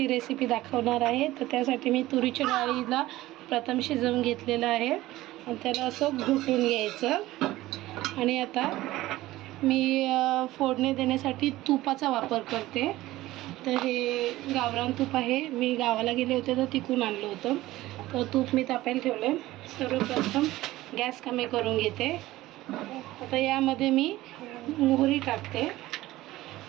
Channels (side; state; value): left; quieter; 16.9 dB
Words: रेसिपी दाखवणार आहे। तर त्यासाठी मी तुरीच्या डाळीला प्रथम शिजवून घेतलेलं आहे आणि त्याला असं घुटून घ्यायचं। आणि आता मी फोडणी देण्यासाठी तुपाचा वापर करते। तर हे गावरान तूप आहे, मी गावाला गेले होते तर तिकून आणलं होतं। तर तूप मी तापायला ठेवलं। सर्वप्रथम गॅस कमी करून घेते। आता यामध्ये मी मोहरी टाकते।